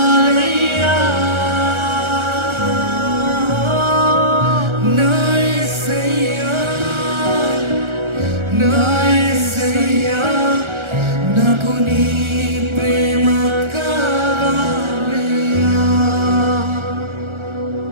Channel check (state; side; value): late; left; 1.4 ms